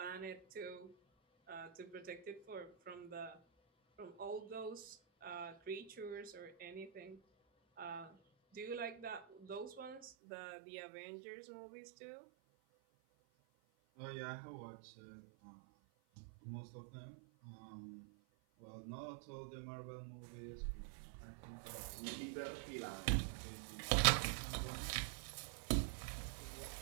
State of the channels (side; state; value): left; drops out; at 10.1 s